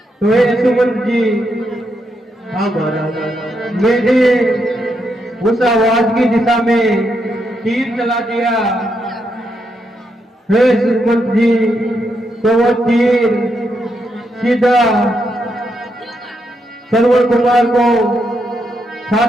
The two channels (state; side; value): normal; both; correlation 0.81